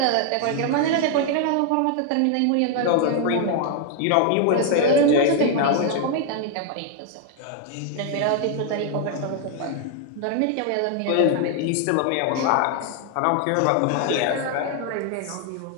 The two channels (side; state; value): both; different; correlation 0.00